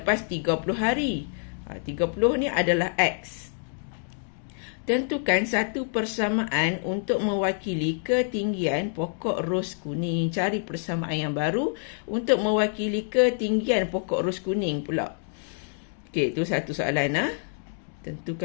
30 hari. 30 ni adalah X. Tentukan satu persamaan untuk mewakili ketinggian pokok ros kuning. Cari persamaan yang baru untuk mewakili ketinggian pokok ros kuning pula. Okey, itu satu soalan.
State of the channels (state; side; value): silent; right; digital silence